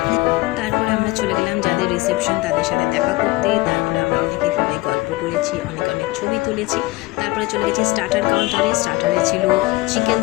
তারপরে আমরা চলে গেলাম যাদের রিসেপশন তাদের সাথে দেখা করতে। তারপরে আমরা অনেকে সবাই গল্প করেছি, অনেক ছবি তুলেছি। তারপরে চলে গেছি স্টার্টার কাউন্টারে। স্টার্টারে ছিল chicken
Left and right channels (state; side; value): quieter; right; 21.0 dB